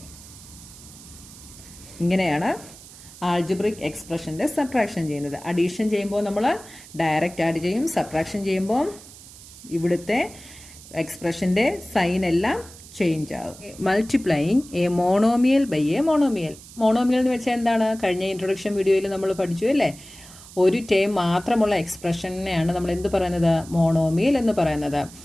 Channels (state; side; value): noise; right; hiss, 19 dB below the sound